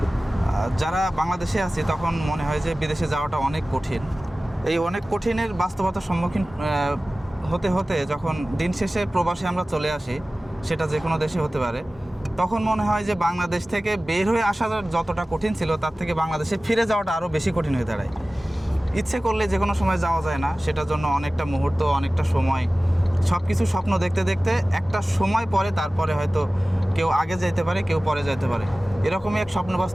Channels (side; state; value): both; normal; correlation 0.97